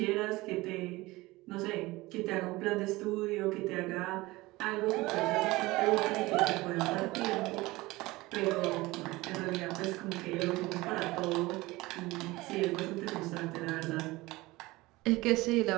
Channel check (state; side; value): quieter; left; 20.5 dB